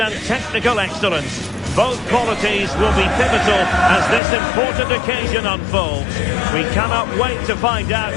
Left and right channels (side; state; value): right; drops out; at 4.2 s